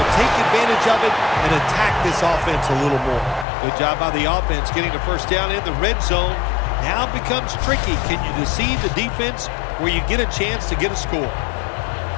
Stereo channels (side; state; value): right; drops out; at 3.5 s